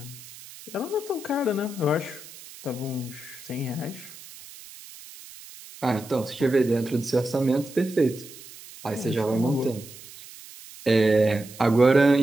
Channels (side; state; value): right; noise; hiss, 18 dB below the sound